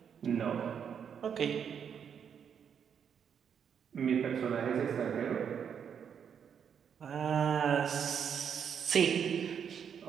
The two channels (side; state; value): left; quieter; 7.7 dB